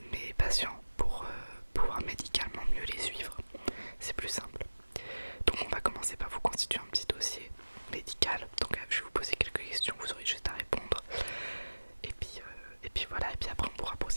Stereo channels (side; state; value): both; inverted; correlation -1.00